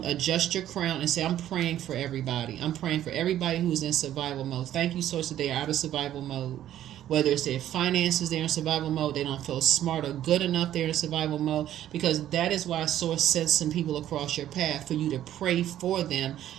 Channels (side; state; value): left; quieter; 12.0 dB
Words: adjust your crown, and say, I'm praying for everybody. I'm praying for everybody who's in survival mode. Thank you, Source, that they are out of survival mode. Whether it's their finances, they're in survival mode. They don't feel smart or good enough, they're in survival mode. Because that is why Source sends some people across your path for you to pray for them,